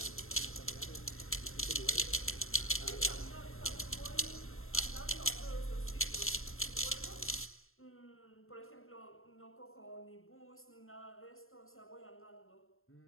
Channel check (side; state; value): right; late; 0.61 ms